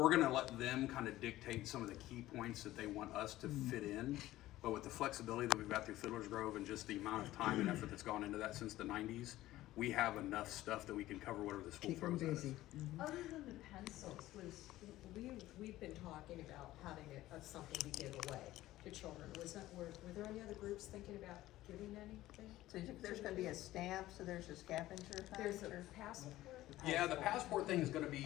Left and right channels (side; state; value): right; quieter; 15.7 dB